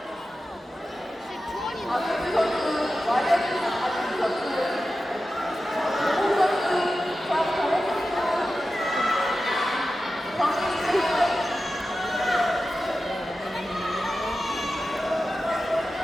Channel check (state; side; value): normal; both; correlation 0.93